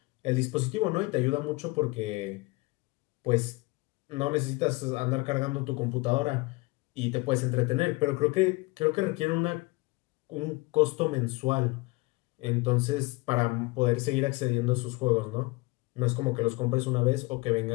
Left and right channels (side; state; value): right; quieter; 24.4 dB